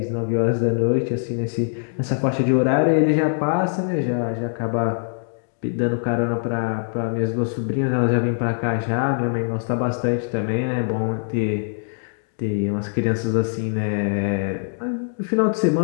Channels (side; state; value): right; silent; digital silence